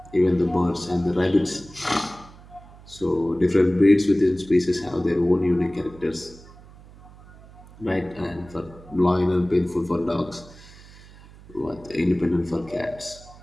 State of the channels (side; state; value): right; noise; hum, 21 dB below the sound